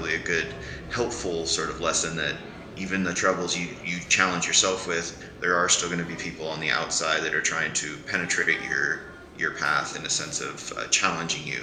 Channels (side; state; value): both; identical; correlation 1.00